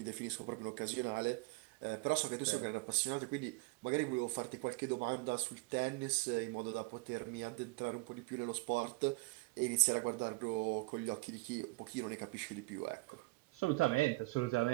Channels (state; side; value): quieter; left; 25.3 dB